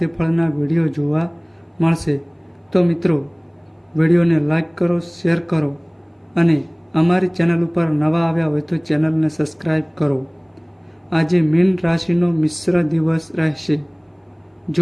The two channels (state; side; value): identical; both; correlation 1.00